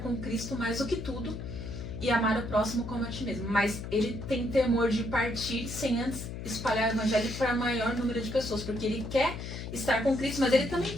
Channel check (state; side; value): noise; left; hum, 8 dB below the sound